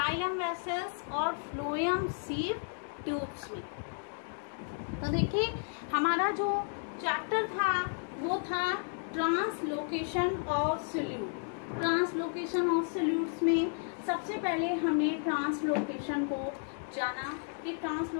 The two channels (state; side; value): silent; right; 56 dB below the other